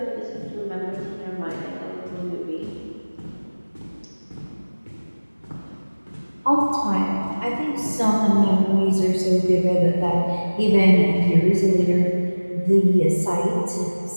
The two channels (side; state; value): both; inverted; correlation -1.00